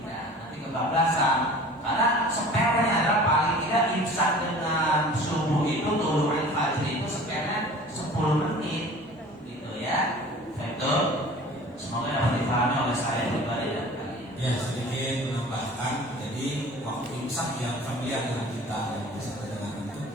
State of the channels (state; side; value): normal; both; correlation 0.44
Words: Nanti kebablasan. Karena sepelnya adalah paling tidak imsak dengan subuh itu tulu'il fajri itu sepelnya 10 menit, gitu ya. Betul. Semoga dapat dipahami oleh saya pribadi dan kalian. Ya, sedikit menambahkan. Jadi waktu imsak yang familiar dengan kita yang bisa kita dengarkan itu,